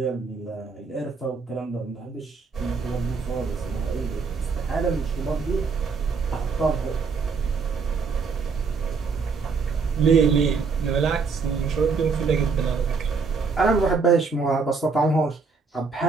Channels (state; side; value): quieter; left; 4.9 dB